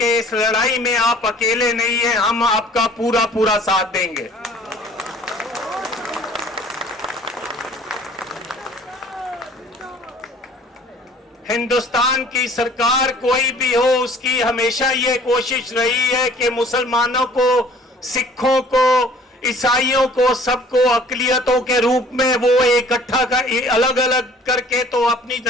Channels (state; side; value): normal; both; correlation 0.52